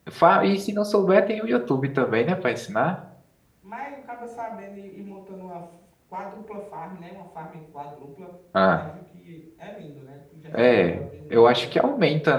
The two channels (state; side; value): identical; both; correlation 1.00